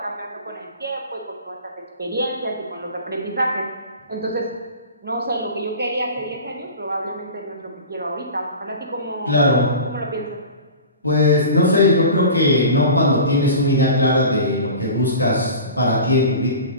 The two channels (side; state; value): both; inverted; correlation -0.36